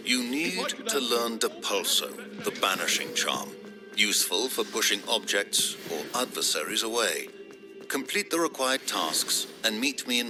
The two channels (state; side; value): identical; both; correlation 1.00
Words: You need to learn Depulso, the banishing charm. Useful for pushing objects or adversaries away. Complete the required tasks and meet me in